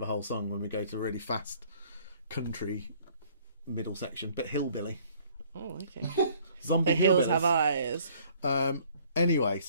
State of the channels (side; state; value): both; inverted; correlation -0.58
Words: whole song when we go to a really fast country middle section, but hillbilly. Oh, okay. Zombie The hills hillbillies. have eyes. Anyway,